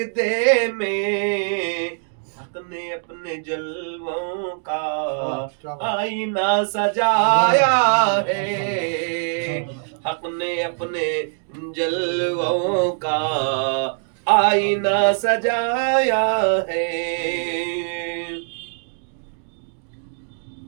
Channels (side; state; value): left; silent; digital silence